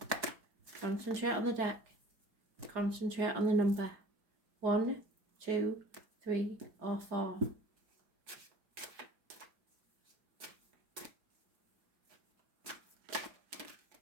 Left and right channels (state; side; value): late; left; 4.9 ms